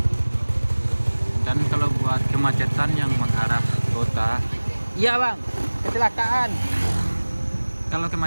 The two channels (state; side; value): inverted; both; correlation -1.00